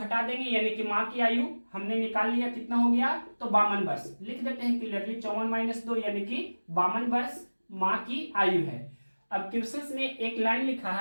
देंगे यानी कि माँ की आयु हमने निकाल लिया, कितना हो गया, तो 52 वर्ष। लिख देते हैं क्लियरली 54 - 2 यानी कि 52 वर्ष माँ की आयु है। अब क्वेश्चन में एक लाइन लिखा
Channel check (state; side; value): inverted; both; correlation -1.00